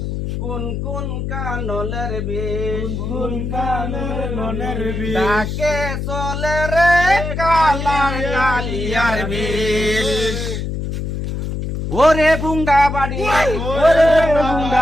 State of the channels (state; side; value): noise; left; hum, 4 dB below the sound